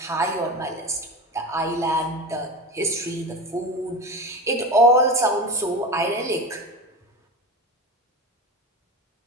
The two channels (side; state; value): both; normal; correlation 0.26